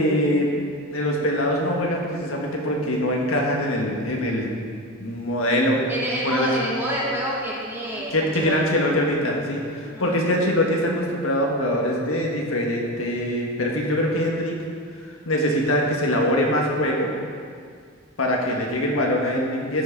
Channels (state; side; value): normal; both; correlation 0.20